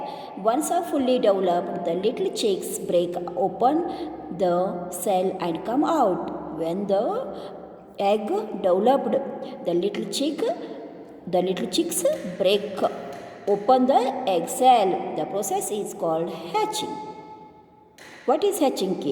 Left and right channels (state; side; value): identical; both; correlation 1.00